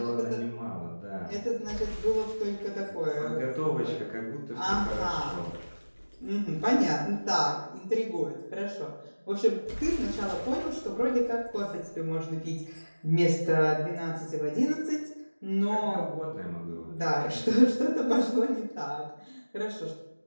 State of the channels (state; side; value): inverted; both; correlation -1.00